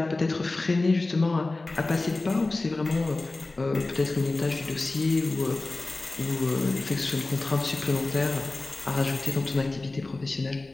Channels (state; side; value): quieter; right; 3.2 dB